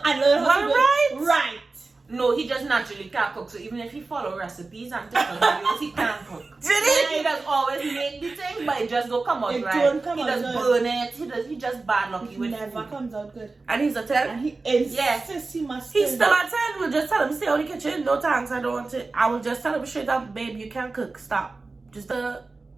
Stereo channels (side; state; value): left; quieter; 3.7 dB